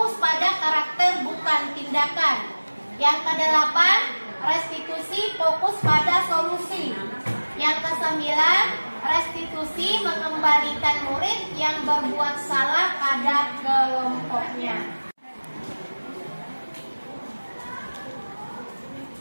pada karakter bukan tindakan. Yang kedelapan, restitusi fokus pada solusi. Yang kesembilan, restitusi mengembalikan murid yang berbuat salah pada kelompoknya.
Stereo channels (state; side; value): inverted; both; correlation -1.00